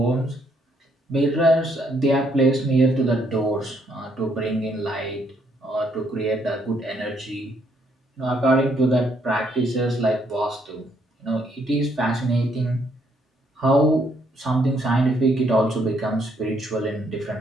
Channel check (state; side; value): normal; both; correlation 0.71